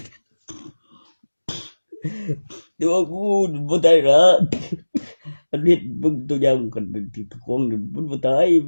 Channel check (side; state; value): both; inverted; correlation -1.00